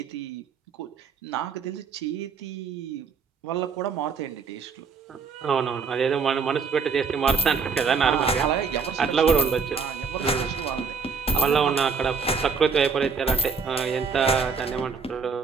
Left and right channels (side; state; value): left; quieter; 5.3 dB